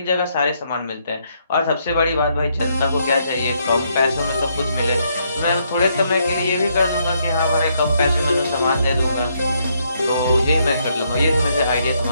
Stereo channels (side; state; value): both; inverted; correlation -0.74